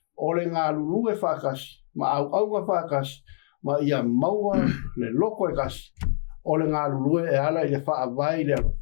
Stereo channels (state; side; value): silent; right; digital silence